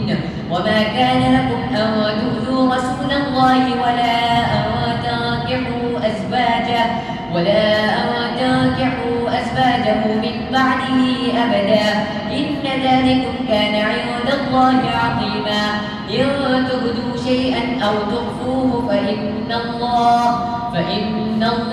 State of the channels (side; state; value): both; identical; correlation 1.00